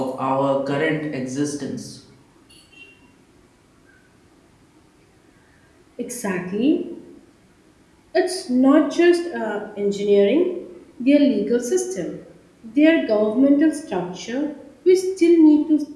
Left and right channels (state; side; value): identical; both; correlation 1.00